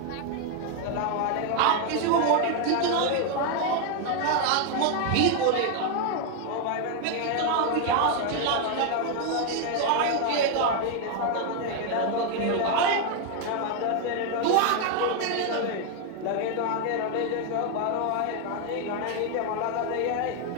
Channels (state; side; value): different; both; correlation 0.01